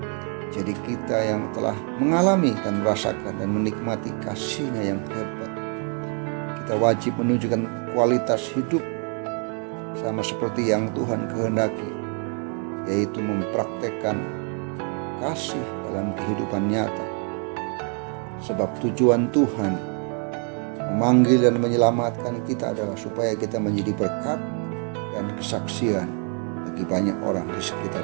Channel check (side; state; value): left; quieter; 39.9 dB